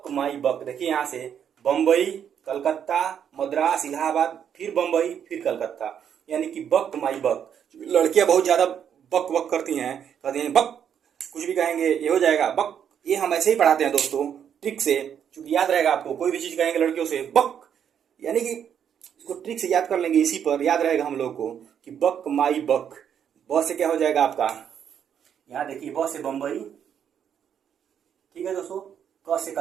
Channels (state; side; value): quieter; left; 8.6 dB